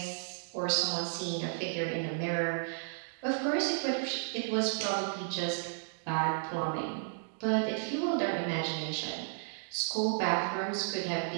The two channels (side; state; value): left; silent; digital silence